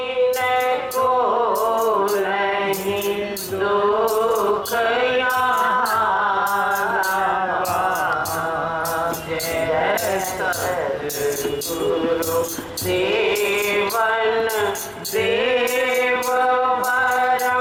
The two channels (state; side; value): identical; both; correlation 1.00